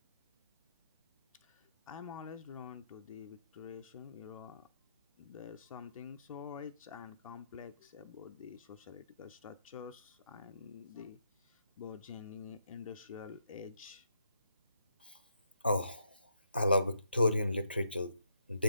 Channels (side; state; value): both; inverted; correlation -0.77